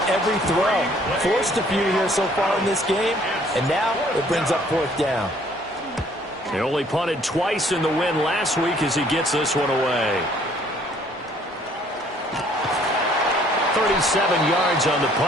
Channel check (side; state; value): both; normal; correlation 0.60